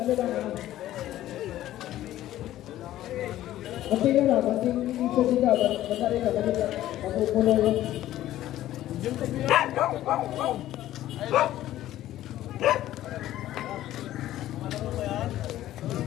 Masih na, masih ito sila, masari na, masupuno yun.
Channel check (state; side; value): quieter; right; 13.8 dB